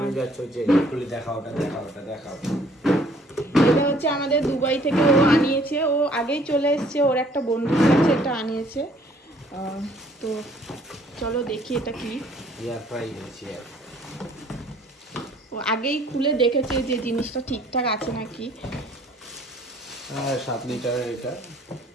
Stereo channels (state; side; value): normal; both; correlation 0.59